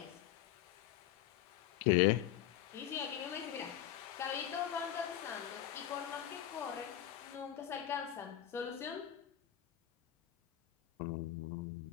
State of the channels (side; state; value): right; quieter; 11.7 dB